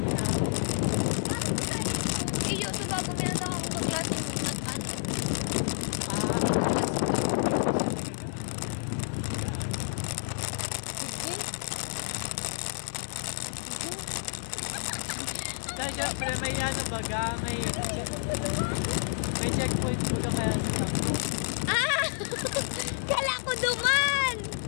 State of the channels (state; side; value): silent; right; 58 dB below the other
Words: na, Iyo, so bago minatang akong kaklase mo, nag-ano, ah, nag-class ka. Dahil syempre may ano baga, may checkpoint baga kaya sa takbo. Ah! Kala ko duman!